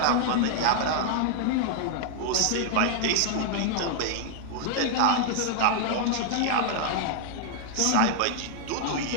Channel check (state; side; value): different; both; correlation 0.00